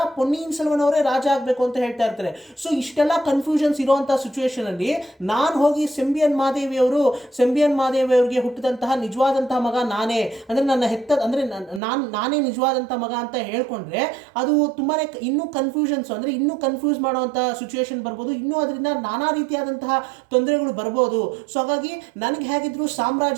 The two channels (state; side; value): drops out; left; at 11.8 s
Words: ಪೊನ್ನಿಯಿನ್ ಸೆಲ್ವನ್ ಅವರೇ ರಾಜ ಆಗ್ಬೇಕು ಅಂತ ಹೇಳ್ತಾ ಇರ್ತಾರೆ. ಸೊ ಇಷ್ಟೆಲ್ಲ ಕನ್ಫ್ಯೂಷನ್ಸ್ ಇರುವಂತಹ ಸಿಚುವೇಶನ್ ಅಲ್ಲಿ ನಾನು ಹೋಗಿ ಸೆಂಬಿಯನ್ ಮಾದೇವಿ ಅವರಿಗೆ ಹುಟ್ಟಿದಂತಹ ನಿಜವಾದಂತಹ ಮಗ ನಾನೇ, ಅಂದ್ರೆ ನನ್ನ ಹೆತ್ತ ಅಂದ್ರೆ ನಾನೇ ನಿಜವಾದಂತಹ ಮಗ ಅಂತ ಹೇಳ್ಕೊಂಡ್ರೆ ಅದು ತುಂಬಾನೇ ಇನ್ನೂ ಕನ್ಫ್ಯೂಷನ್ಸ್, ಅಂದ್ರೆ ಇನ್ನೂ ಕನ್ಫ್ಯೂಸ್ ಮಾಡುವಂತಹ ಸಿಚುವೇಶನ್ ಬರ್ಬೋದು, ಇನ್ನೂ ಅದರಿಂದ ನಾನಾ ರೀತಿಯಾದಂತಹ ತೊಂದರೆಗಳು ಬರ್ಬೋದು. ಸೊ ಹಾಗಾಗಿ ನನಗೆ ಹೇಗಿದ್ರು ಸಾಮ್ರಾಜ್ಯ